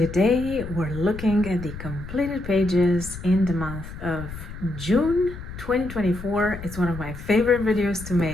we're looking at the completed pages in the month of June 2024. It's one of my favorite videos to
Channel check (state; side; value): noise; left; rumble, 11 dB below the sound